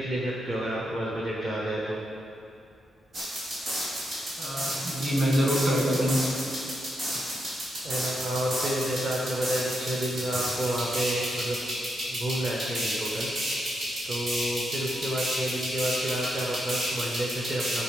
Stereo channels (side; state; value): both; normal; correlation 0.82